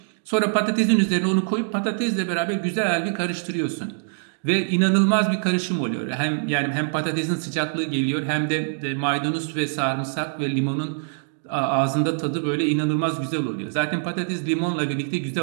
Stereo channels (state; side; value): silent; left; digital silence